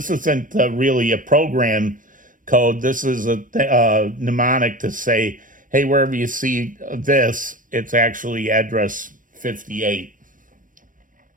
isn't really a program code. This is a mnemonic to say, hey, wherever you see this, it's actually address 58.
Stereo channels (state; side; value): late; left; 0.39 ms